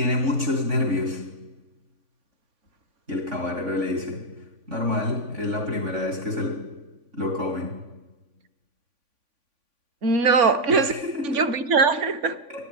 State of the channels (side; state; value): left; late; 3.5 ms